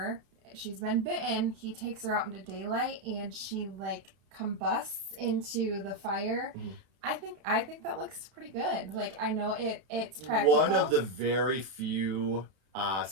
she's been bitten. He takes her out into daylight and she like combusts into the fire. I think that looks pretty good. Like, I know it's practical. One of the very few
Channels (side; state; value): left; late; 31 ms